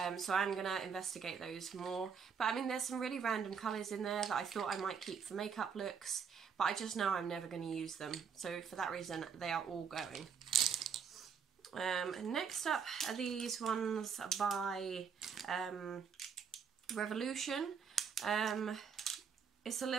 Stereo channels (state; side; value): quieter; left; 6.7 dB